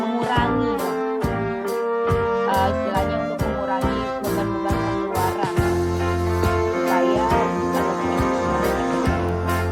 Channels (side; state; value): both; identical; correlation 1.00